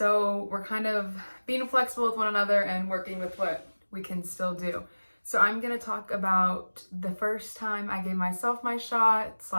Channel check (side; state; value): both; inverted; correlation -1.00